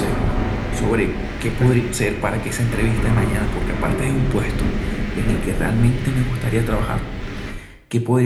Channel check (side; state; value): both; identical; correlation 1.00